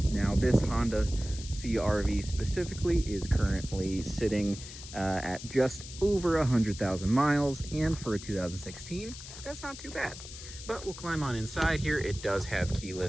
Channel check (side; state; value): left; noise; hiss, 13 dB below the sound